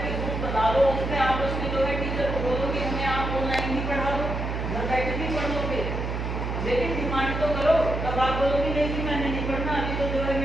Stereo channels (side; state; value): right; noise; hum, 3 dB below the sound